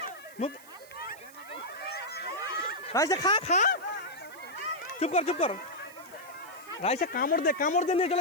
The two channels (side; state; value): right; noise; hiss, 21 dB below the sound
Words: মুখ রাইসা খা চুপ কর রাইসা কামড় দে নিয়ে